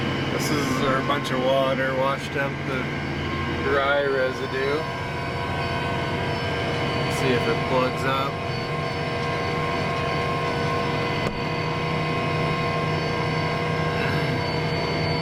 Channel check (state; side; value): identical; both; correlation 1.00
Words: This is our bunch of water washed up the dry residue. Let's see if it plugs up.